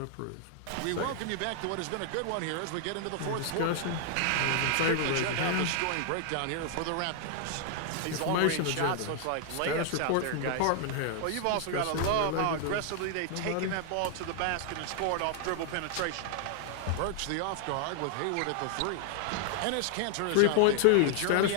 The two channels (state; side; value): different; both; correlation 0.00